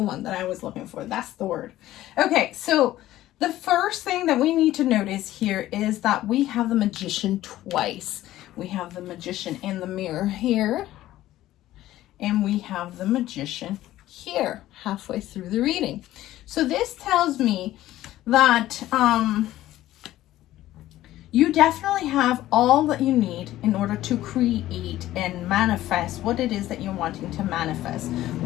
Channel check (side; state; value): right; quieter; 14.7 dB